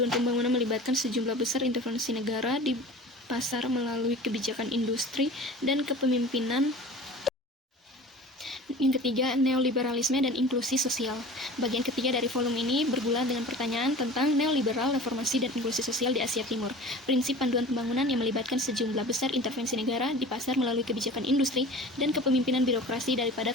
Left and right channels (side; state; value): both; normal; correlation 0.39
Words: pembangunan melibatkan sejumlah besar intervensi negara di pasar melalui kebijakan industri dan kepemimpinan. Yang ketiga, neoliberalisme dan inklusi sosial. Bagian ketiga dari volume ini bergulat dengan pertanyaan tentang neoliberal, reformasi, dan inklusi sosial di Asia Timur. Prinsip panduan pembangunan yang melibatkan sejumlah besar intervensi negara di pasar melalui kebijakan industri dan kepemimpinan birokrasi daripada